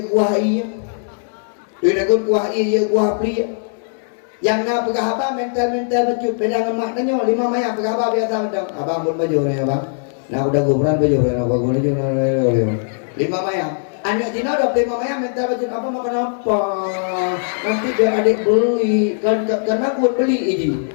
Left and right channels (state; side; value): silent; right; digital silence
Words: kuah iya. Tapi dagun kuah iya je kuah pria. Yang nak pegah apa mental becut pedang lemak tanya 5 mayam pegah apa biasa mendang. Abang pun baju ni abang. Nak udah gumeran baju ni nak guna je 5 mayam. Anak Cina dah 5 mayam mental becut apa makan apa. Nanti biar adik beli karena aku beli ini.